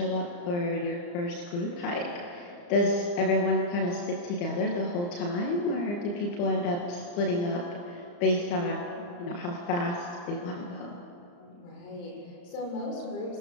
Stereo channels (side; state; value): right; late; 34 ms